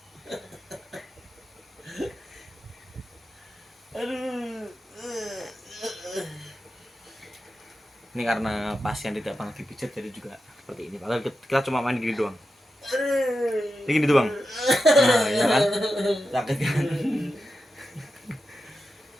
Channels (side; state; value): both; normal; correlation 0.90